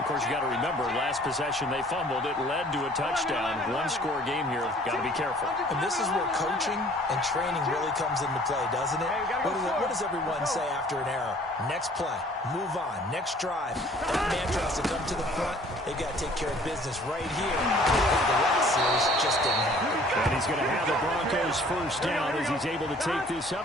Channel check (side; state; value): both; normal; correlation 0.54